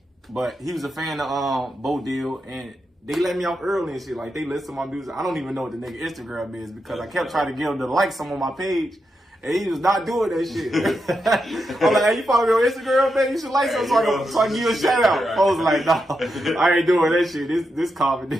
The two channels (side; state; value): both; normal; correlation 0.86